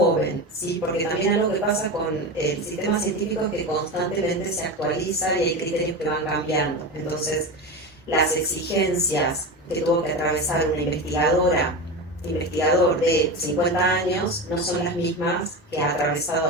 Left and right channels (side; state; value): both; normal; correlation 0.23